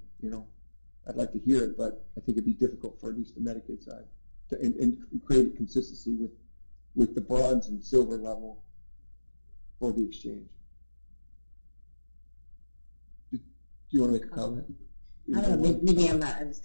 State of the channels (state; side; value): inverted; both; correlation -1.00